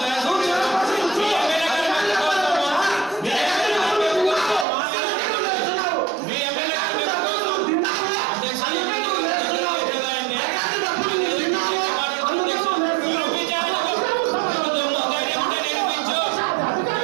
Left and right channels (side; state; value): left; drops out; at 4.7 s